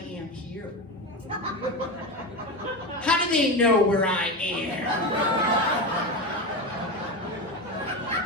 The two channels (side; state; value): both; normal; correlation 0.20